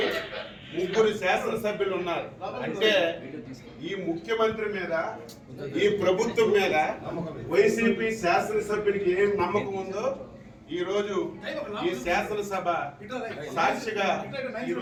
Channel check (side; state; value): both; identical; correlation 1.00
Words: 3 శాసనసభ్యులు ఉన్నారు. అంటే ఈ ముఖ్యమంత్రి మీద, ఈ ప్రభుత్వం మీద వైసీపీ శాసనసభ్యుడికి ఏం నమ్మకం ఉందో ఈ రోజు ఈ శాసనసభ సాక్షిగా